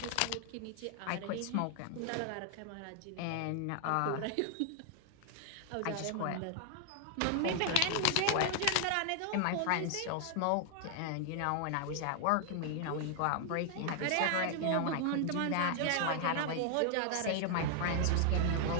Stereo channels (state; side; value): different; both; correlation 0.00